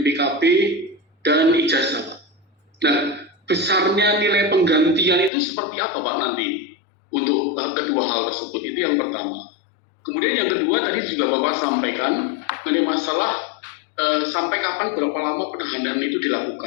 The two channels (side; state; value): right; drops out; at 5.3 s